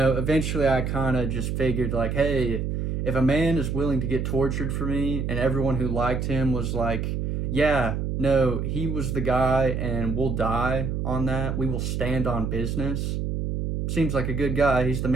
I kind of just figured like, hey, if a man is willing to get tortured for me and everyone who liked him was like, yeah, no, he was the guy and we'll die on that, we will stand on business, seems like a good guy, he's the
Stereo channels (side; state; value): right; noise; hum, 1 dB below the sound